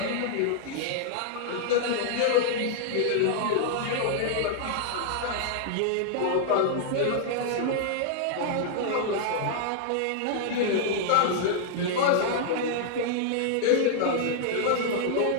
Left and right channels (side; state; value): both; different; correlation -0.01